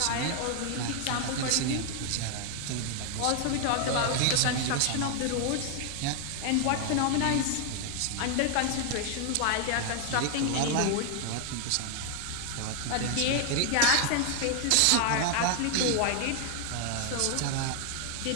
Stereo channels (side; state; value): both; different; correlation 0.00